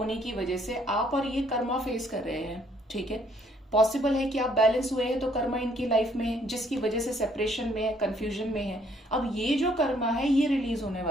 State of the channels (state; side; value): normal; both; correlation 0.66